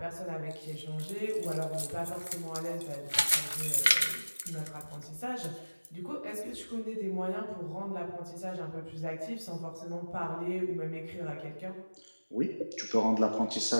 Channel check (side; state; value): both; inverted; correlation -1.00